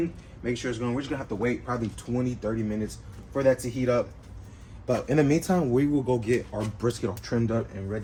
make sure it's going. We're just gonna have to wait probably 20, 30 minutes for that to heat up. But in the meantime, we will go get our brisket all trimmed up and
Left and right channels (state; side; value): identical; both; correlation 1.00